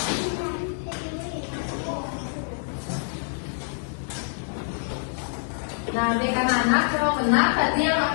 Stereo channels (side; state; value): right; silent; 61 dB below the other